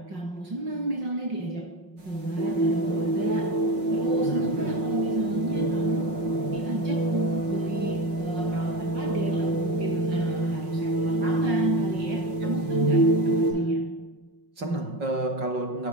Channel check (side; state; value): left; late; 5.4 ms